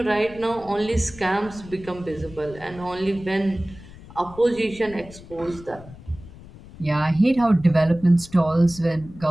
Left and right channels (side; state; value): left; noise; rumble, 18 dB below the sound